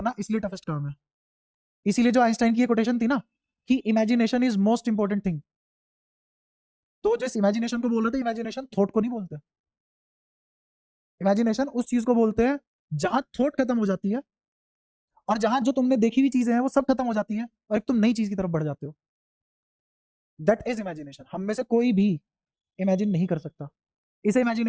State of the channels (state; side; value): identical; both; correlation 1.00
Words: इसलिए टफेस्ट काम है। इसीलिए जो आइंस्टाइन की ये कोटेशन थी ना, कि imagination is most important thing, तो जिस इमेजिनेशन को बोल रहे थे, इमेजिनेशन थॉट को नहीं बोलते। इमेजिनेशन उस चीज को बोलते हैं जहां थॉट खत्म हो जाती है, और जहां जो तुमने देखी हुई चीजें हैं वो सब खत्म हो जाती है, और एक तुम नई चीज की तरफ बढ़ जाते हो। That is imagination. हम में से कोई भी इमेजिन नहीं कर सकता। इसे